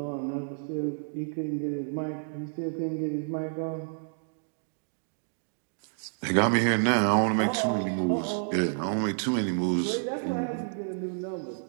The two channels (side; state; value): left; silent; digital silence